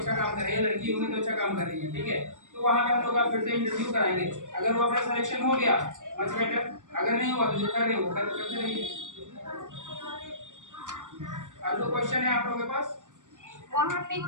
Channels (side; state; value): left; late; 0.86 ms